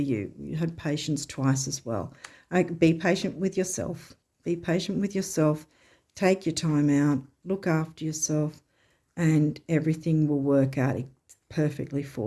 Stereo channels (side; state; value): both; identical; correlation 1.00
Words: You had patience twice as well. Be patient with yourself. Be patient with yourself. Take your time out. Look after yourself. And everything will work out perfectly